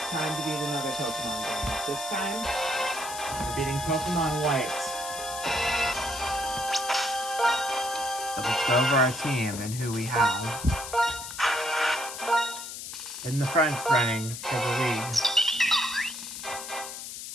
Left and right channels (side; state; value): left; noise; hiss, 9 dB below the sound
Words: time to beat another Pokemon game. This time, we're beating Pokemon White. But let's go over our team and who we have. In the front running for the league.